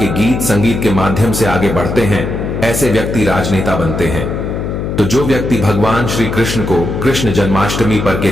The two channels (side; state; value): left; noise; hum, 3 dB below the sound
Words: गीत संगीत के माध्यम से आगे बढ़ते हैं। ऐसे व्यक्ति राजनेता बनते हैं। तो जो व्यक्ति भगवान श्री कृष्ण को कृष्ण जन्माष्टमी पर